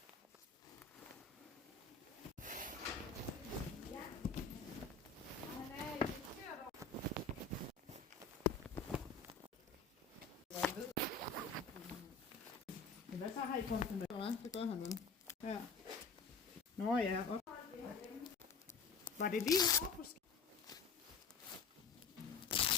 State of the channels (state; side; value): quieter; right; 4.7 dB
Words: Men hvad så har I kommet med? Det gør han nu. Ja. Nå ja. Var det lige over?